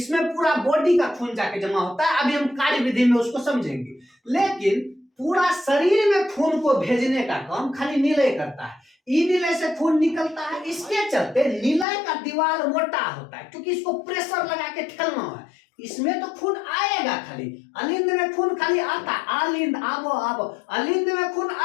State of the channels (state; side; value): drops out; right; at 11.9 s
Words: पूरा बॉडी का खून जाके जमा होता है। अभी हम कार्य विधि में उसको समझेंगे, लेकिन पूरा शरीर में खून को भेजने का काम खाली निलय करता है। ई निलय से खून निकलता है, इसके चलते निलय का दीवार मोटा होता है क्योंकि इसको प्रेशर लगा के ठेलना है। इसमें तो खून आएगा, खाली अलिंद में खून खाली आता है। अलिंद आवो आवो, अलिंद में खून